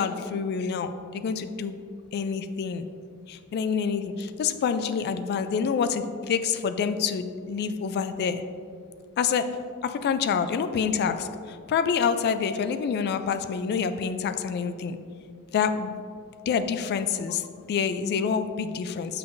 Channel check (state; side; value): quieter; right; 6.0 dB